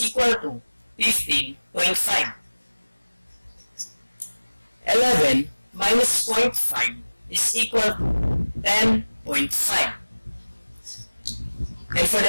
equal to 15.5. 11 minus 0.5 is equal to 10.5. And for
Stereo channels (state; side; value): inverted; both; correlation -1.00